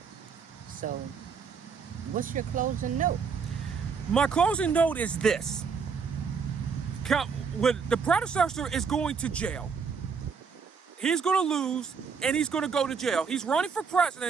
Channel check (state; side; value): quieter; left; 5.8 dB